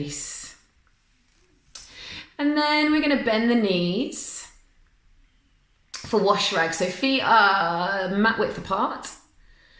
And then we're going to bend the knees for wash rag. So feet are mat width apart.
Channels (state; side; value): identical; both; correlation 1.00